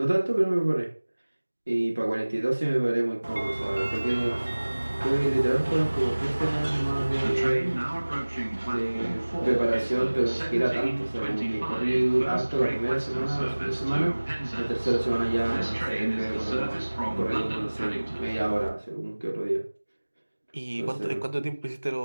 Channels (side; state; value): both; inverted; correlation -1.00